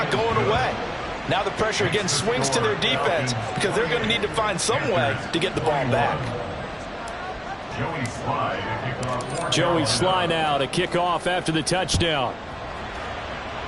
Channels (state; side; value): identical; both; correlation 1.00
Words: going away. Now the pressure again swings to their defense because they're going to need to find some way to get the ball back. Joey Sly now to kick off after the touchdown.